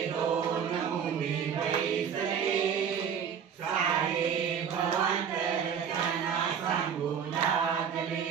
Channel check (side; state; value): left; quieter; 7.5 dB